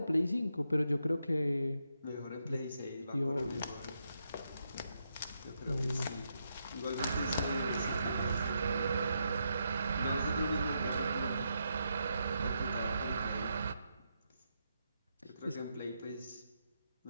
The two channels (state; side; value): inverted; both; correlation -0.81